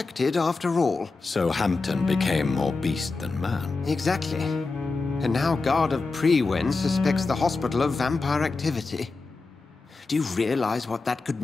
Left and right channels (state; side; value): quieter; right; 3.8 dB